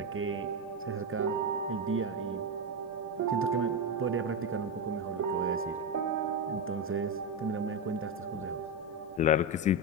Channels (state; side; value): normal; both; correlation 0.10